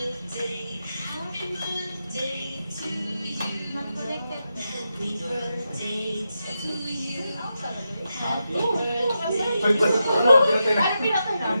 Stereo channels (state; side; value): inverted; both; correlation -0.87